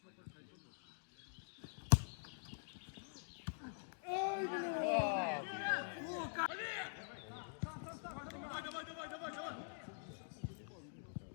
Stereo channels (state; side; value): silent; right; digital silence